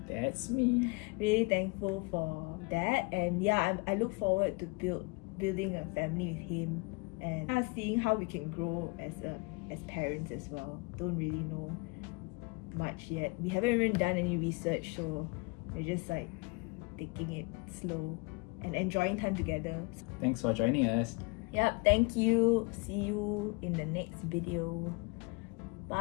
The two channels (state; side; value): quieter; right; 28.3 dB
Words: that's me. Really thankful for that. And yeah, I look forward to building a family with him, and seeing how we can grow as parents as well. Don't really know much yet. We haven't even done any research, so we're just like taking it slow and enjoying time together. Thanks for joining us. Yep, thank you. See you in the next video.